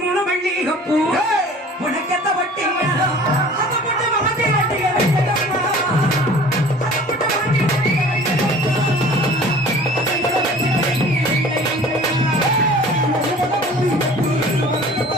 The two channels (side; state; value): both; normal; correlation 0.46